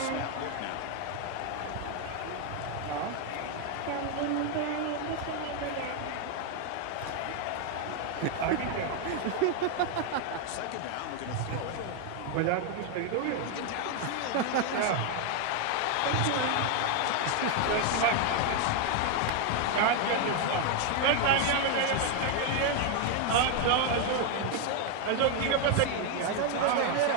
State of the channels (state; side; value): different; both; correlation 0.01